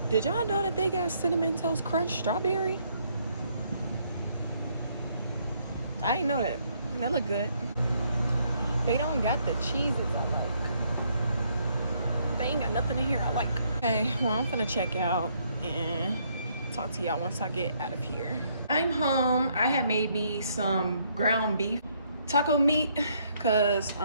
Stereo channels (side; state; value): both; inverted; correlation -0.70